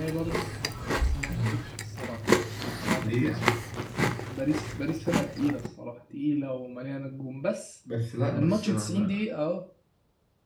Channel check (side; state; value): both; identical; correlation 1.00